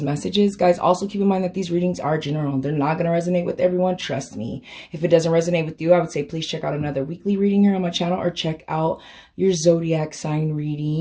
messages. Guys, also keep in mind that these readings are general. They're not going to resonate with everyone, trust me. If it doesn't resonate with you, I would say please check out another weekly reading here on my channel, or check out your zodiac sign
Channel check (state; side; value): identical; both; correlation 1.00